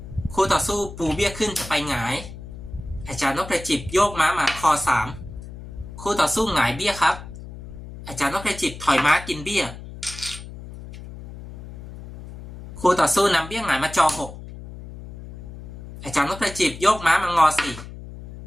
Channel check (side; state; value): left; noise; hum, 13 dB below the sound